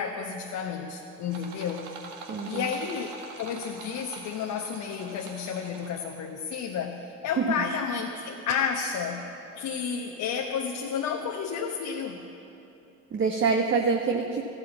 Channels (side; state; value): both; normal; correlation 0.00